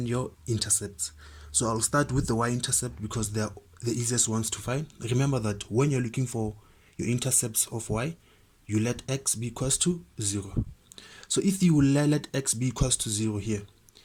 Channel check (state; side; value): identical; both; correlation 1.00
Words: your intercepts. So I'll start with the y-intercept because they're the easiest ones to find. Remember that when you're looking for your intercepts of y, you let x be equals to 0. So if you let x be equals to 0 here,